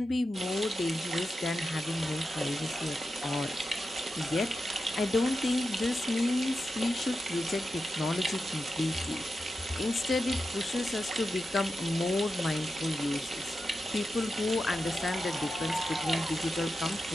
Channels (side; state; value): both; normal; correlation 0.90